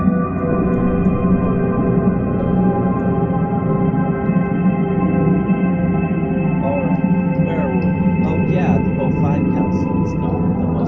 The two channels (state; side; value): identical; both; correlation 1.00